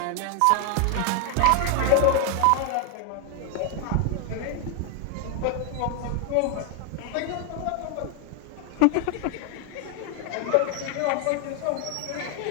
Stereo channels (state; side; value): different; both; correlation 0.01